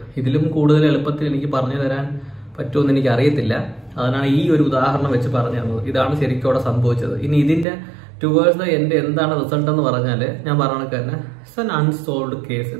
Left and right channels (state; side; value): drops out; left; at 7.7 s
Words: ഇതിലും കൂടുതൽ എളുപ്പത്തിൽ എനിക്ക് പറഞ്ഞു തരാൻ പറ്റുമെന്ന് എനിക്ക് അറിയത്തില്ല. അതിനാണ് ഈ ഒരു ഉദാഹരണം വെച്ച് പറഞ്ഞു തന്നത്. ഇതാണ് ശരിക്കും അവിടെ സംഭവിച്ചത്. ഇനി ഇതിൻ്റെ ടുവേഴ്സ് ദ എൻഡ് എന്താണ് റിസൾട്ട് എന്ന് പറഞ്ഞാൽ ഞാൻ പറഞ്ഞ തന്നെ ഇറ്റ്സ് ആൻ അൺസോൾവ്ഡ് കേസ്